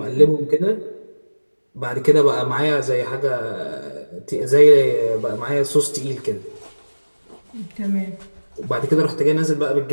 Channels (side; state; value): both; inverted; correlation -1.00